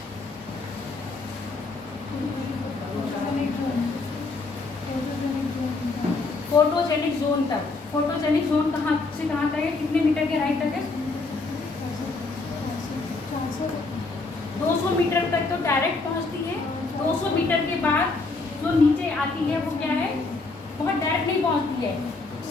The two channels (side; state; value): right; quieter; 3.7 dB